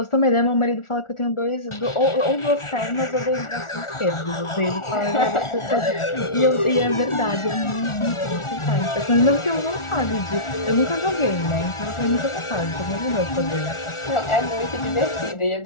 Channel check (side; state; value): right; late; 1.4 ms